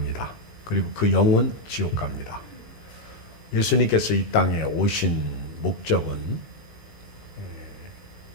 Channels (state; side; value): late; right; 18 ms